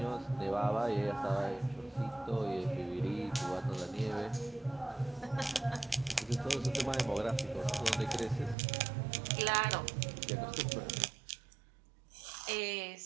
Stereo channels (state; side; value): drops out; left; at 8.6 s